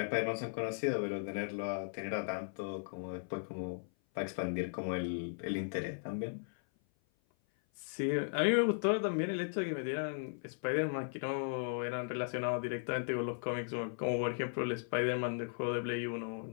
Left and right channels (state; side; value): silent; right; 53 dB below the other